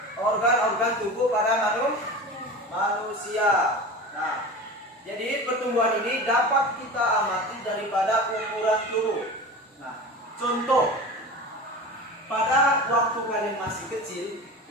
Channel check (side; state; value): both; normal; correlation 0.32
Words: organ-organ tubuh pada manusia. Nah, jadi pertumbuhan ini dapat kita amati daripada ukuran tubuh. Nah, contoh, pada waktu kalian masih kecil,